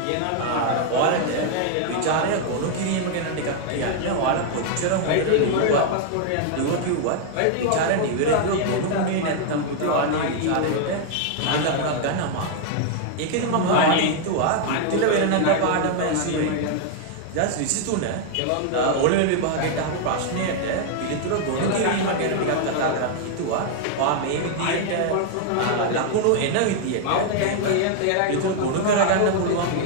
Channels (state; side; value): different; both; correlation 0.00